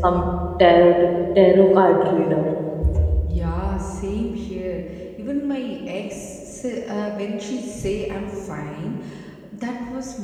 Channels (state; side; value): identical; both; correlation 1.00